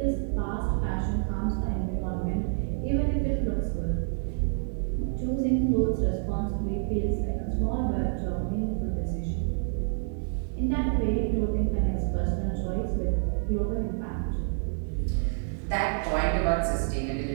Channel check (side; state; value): left; silent; digital silence